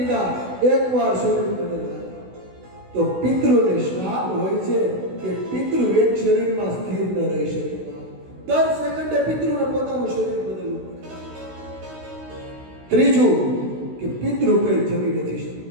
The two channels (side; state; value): left; late; 16 ms